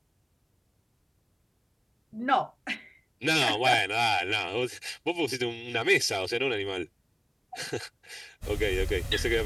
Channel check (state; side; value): identical; both; correlation 1.00